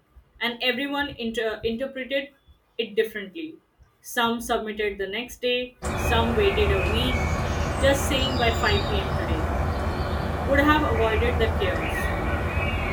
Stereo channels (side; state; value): both; identical; correlation 1.00